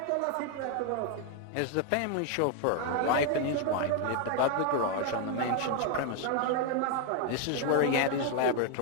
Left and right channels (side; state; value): both; different; correlation 0.01